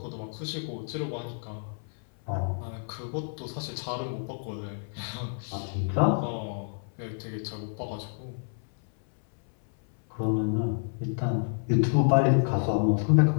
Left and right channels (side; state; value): right; silent; 57 dB below the other